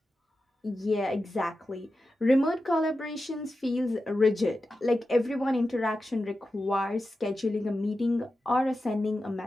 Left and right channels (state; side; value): normal; both; correlation 0.91